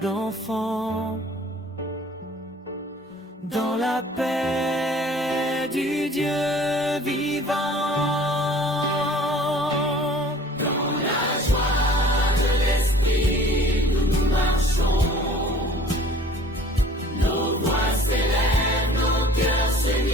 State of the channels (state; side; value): normal; both; correlation 0.50